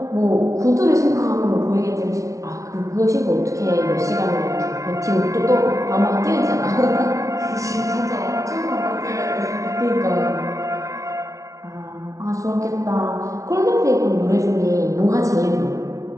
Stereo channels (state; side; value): late; left; 0.15 ms